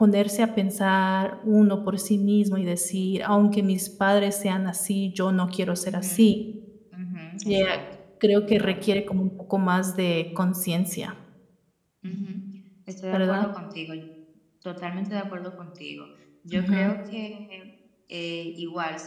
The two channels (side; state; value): both; identical; correlation 1.00